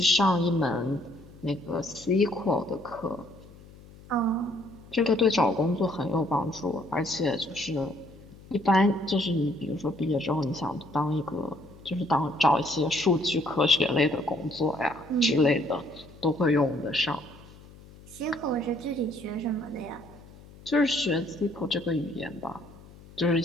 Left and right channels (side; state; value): left; noise; hum, 21 dB below the sound